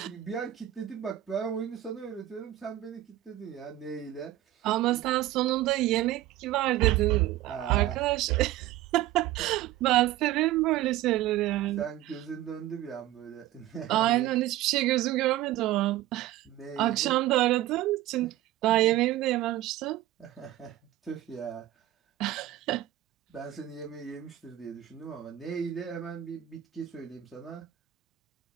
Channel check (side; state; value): left; quieter; 14.5 dB